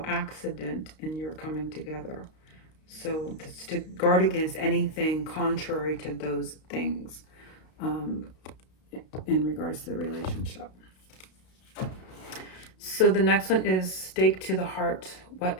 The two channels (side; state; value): right; late; 32 ms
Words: accident in your coming together. So it's to guard against anything contrary to those things in regards to the relationship. So the next one is stake to the heart. What